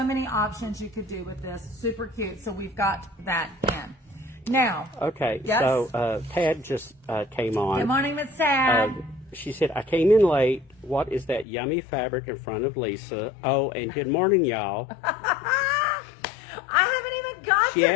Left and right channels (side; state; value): right; drops out; at 11.5 s